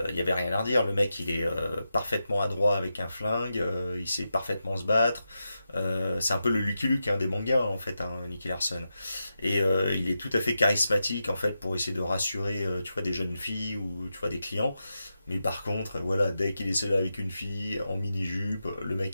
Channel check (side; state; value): both; inverted; correlation -0.89